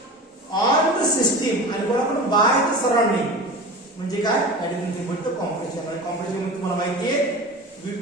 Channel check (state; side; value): normal; both; correlation 0.32